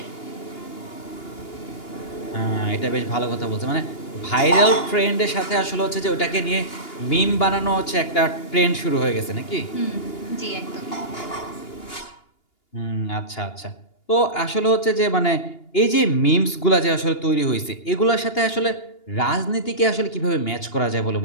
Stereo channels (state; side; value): late; right; 2.8 ms